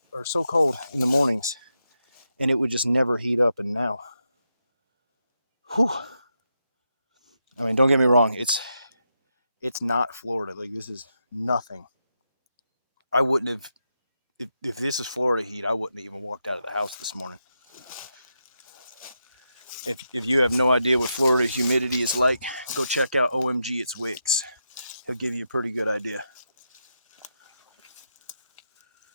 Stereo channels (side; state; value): both; inverted; correlation -0.84